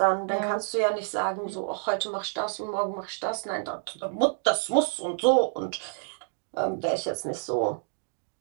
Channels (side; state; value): left; silent; digital silence